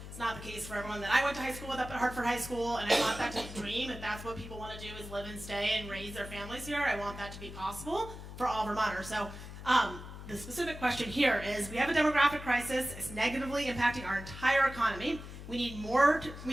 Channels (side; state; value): left; noise; hum, 12 dB below the sound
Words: It's not the case for everyone that I went to high school with up at Hartford High School. And I want that to dream. If that's what people want to do is live and stay and raise their families here, I want that to be possible for all Vermonters. So the specific question here is, we have a demographic crisis. It's negatively impacting our entire economy. We